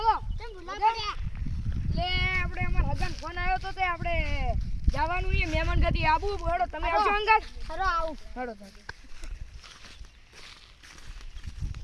કેમ ભૂલા પડ્યા લે આપણે અમાર હગાર ફોન આવ્યો તો તે આપણે જવાનું છે મહેમાન ગતિ આબુ હેડો તમે આવજો અંગાત હેડો આવું હેડો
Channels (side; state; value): both; identical; correlation 1.00